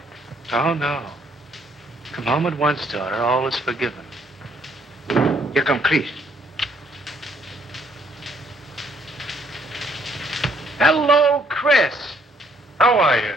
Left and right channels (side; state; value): both; normal; correlation 0.67